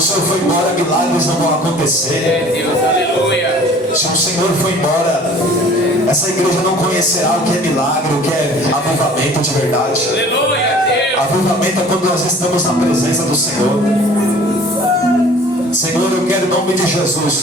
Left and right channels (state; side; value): normal; both; correlation 0.49